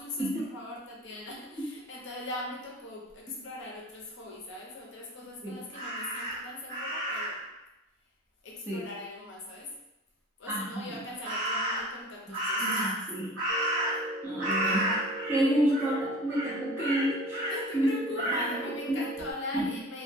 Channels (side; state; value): both; normal; correlation 0.39